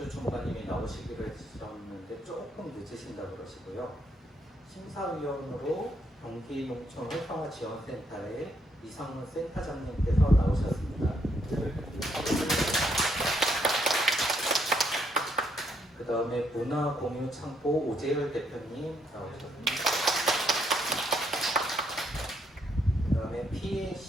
주무관님이 나오시기로 했었는데 조금 늦으신다고 그러시고요. 심사위원으로 경기농촌 활성화지원센터의 이상문 센터장님께서 나오셨습니다. 그 다음에 문화공유창고 오재열 대표님 나오셨습니다. 그 다음에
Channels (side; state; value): both; normal; correlation 0.73